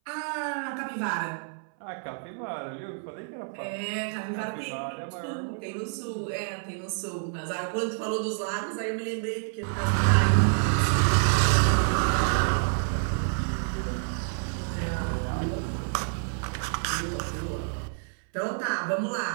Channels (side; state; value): left; silent; 59 dB below the other